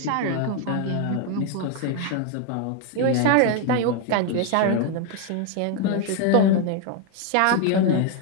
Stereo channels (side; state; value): both; different; correlation 0.01